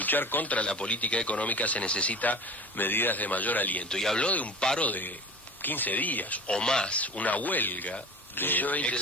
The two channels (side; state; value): both; normal; correlation 0.37